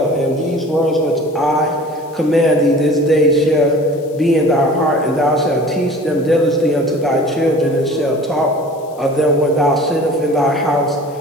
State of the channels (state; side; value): noise; left; hiss, 27 dB below the sound